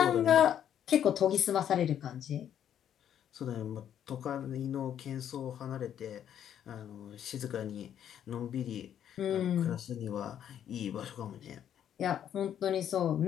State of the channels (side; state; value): right; quieter; 9.8 dB